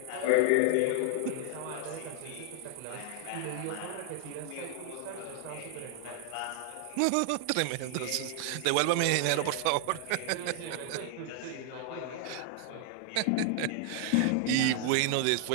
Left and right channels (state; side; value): different; both; correlation 0.00